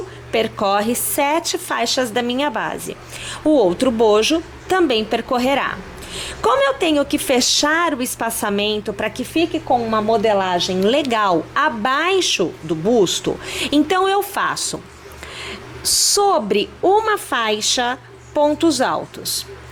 percorre 7 faixas da minha base. O outro bojo também percorrerá. Como eu tenho que fechar o espaçamento para que fique com uma modelagem legal abaixo do busto, então eu faço sobre uma faixa pontos altos.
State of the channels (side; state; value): both; identical; correlation 1.00